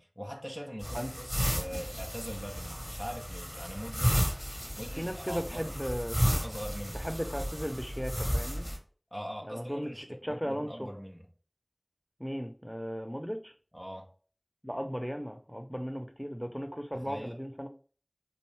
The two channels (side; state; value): both; identical; correlation 1.00